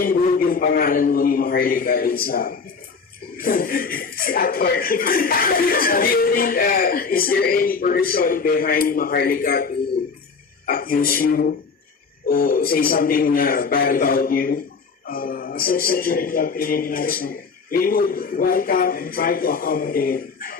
yung pangalan mo ni Maharloka dun sa si actor? Do you think, is there any person behind Maharloka to accuse you or say something bad about you? As I said during the preliminaries, we would welcome and try to accommodate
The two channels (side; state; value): right; quieter; 5.1 dB